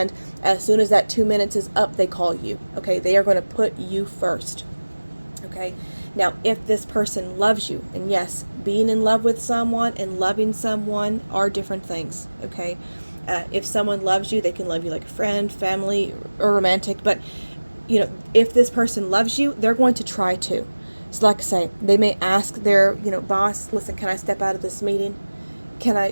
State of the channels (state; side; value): inverted; both; correlation -1.00